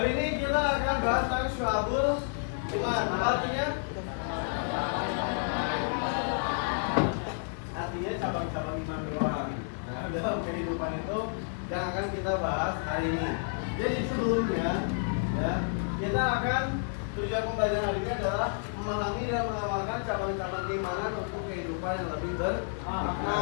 ini kita akan bahas tentang Syu'abul Iman. Apa artinya? Artinya cabang-cabang iman doang. Nah, dalam kehidupan itu yang akan kita bahas hari ini. Jadi sebelumnya, ya, kita akan tujuan pembelajaran hari ini adalah memahami dan mengamalkan cabang-cabang keimanan untuk kehidupan yang lebih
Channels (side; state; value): right; silent; 58 dB below the other